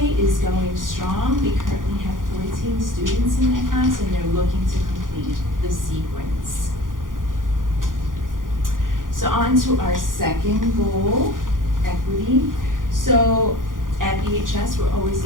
is going strong. We currently have 14 students in that class, and they're looking to complete the sequence. So on to our second goal, equity. So at EHS, we're always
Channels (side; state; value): left; late; 0.90 ms